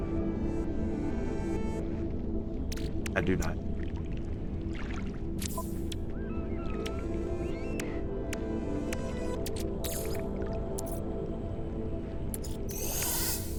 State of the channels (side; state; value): both; identical; correlation 1.00